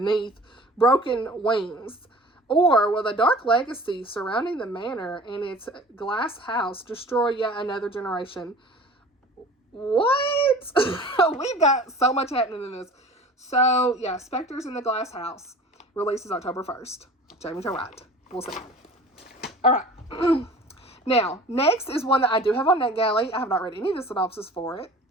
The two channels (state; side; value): normal; both; correlation 0.43